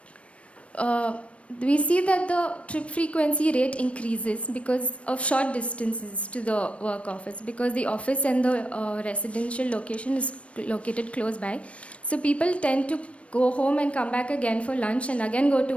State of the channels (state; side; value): late; right; 0.062 ms